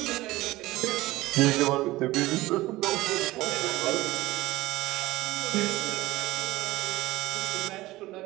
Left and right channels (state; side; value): quieter; left; 18.2 dB